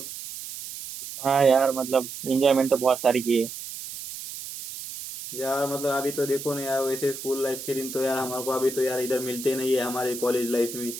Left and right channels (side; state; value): right; noise; hiss, 10 dB below the sound